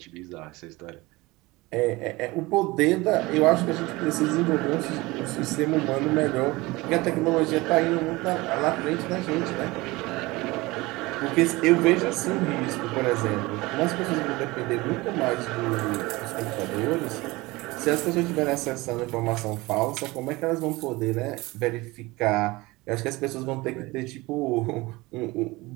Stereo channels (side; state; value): left; quieter; 21.7 dB